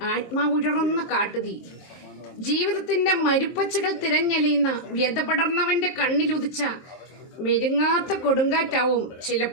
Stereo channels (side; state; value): right; late; 23 ms